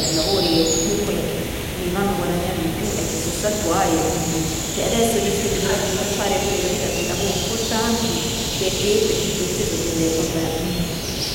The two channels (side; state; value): both; identical; correlation 1.00